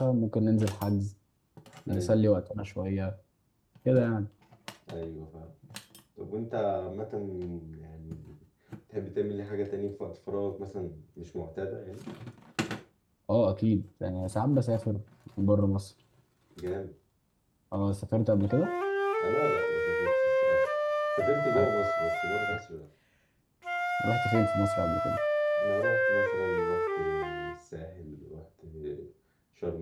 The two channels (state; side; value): identical; both; correlation 1.00